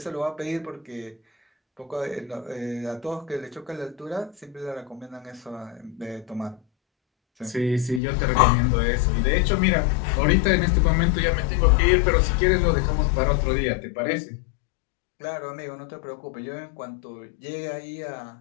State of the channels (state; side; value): drops out; right; at 8.0 s